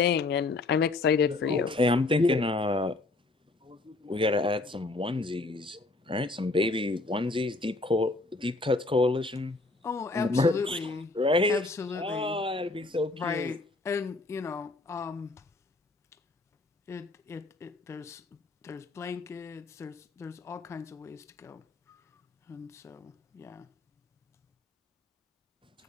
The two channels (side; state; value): right; quieter; 3.2 dB